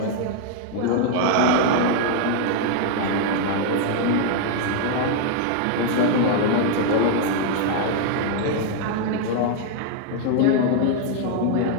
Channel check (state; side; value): different; both; correlation 0.00